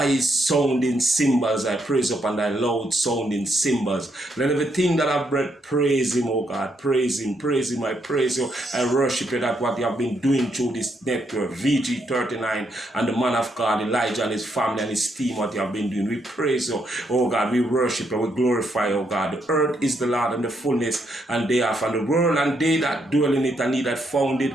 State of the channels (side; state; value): both; normal; correlation 0.77